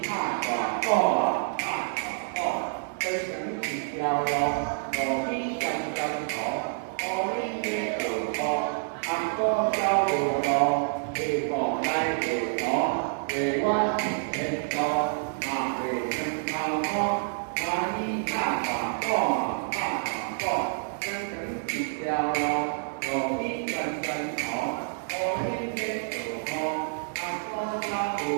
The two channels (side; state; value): left; silent; digital silence